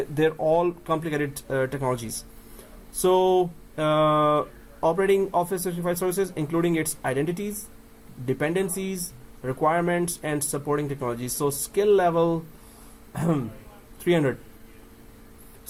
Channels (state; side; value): identical; both; correlation 1.00